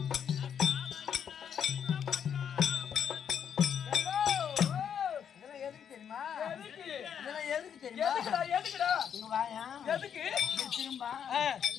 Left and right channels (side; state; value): right; quieter; 8.2 dB